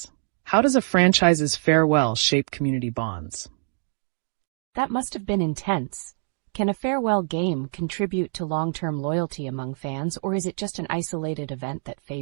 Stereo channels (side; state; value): left; silent; digital silence